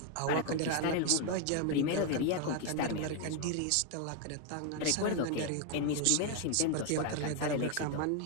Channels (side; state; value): both; different; correlation 0.01